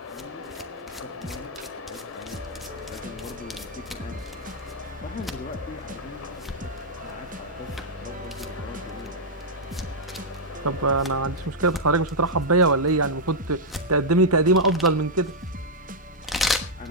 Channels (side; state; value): both; normal; correlation -0.05